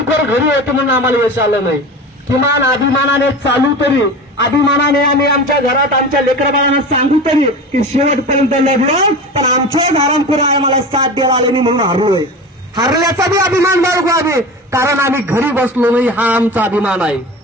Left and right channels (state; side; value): normal; both; correlation 0.31